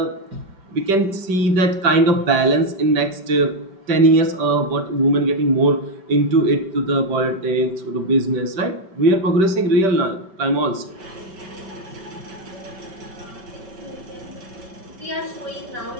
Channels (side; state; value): left; late; 5.2 ms